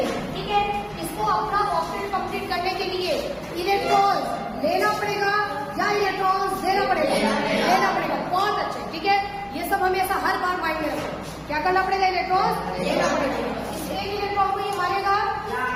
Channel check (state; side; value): identical; both; correlation 1.00